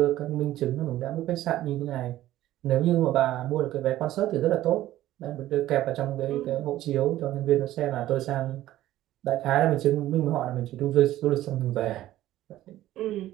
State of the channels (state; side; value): quieter; left; 14.3 dB